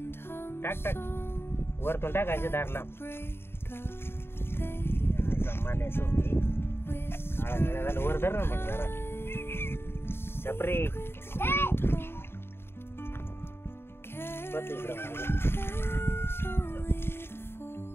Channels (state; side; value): late; right; 0.11 ms